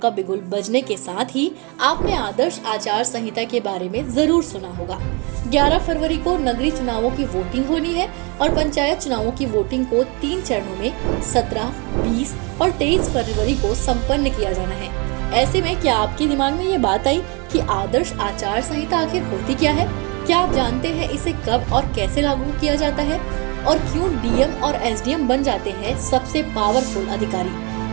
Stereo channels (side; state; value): left; quieter; 30.9 dB